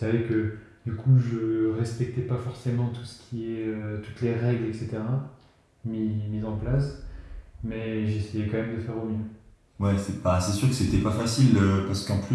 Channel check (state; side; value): identical; both; correlation 1.00